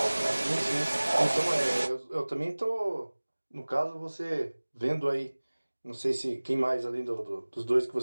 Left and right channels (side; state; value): both; inverted; correlation -1.00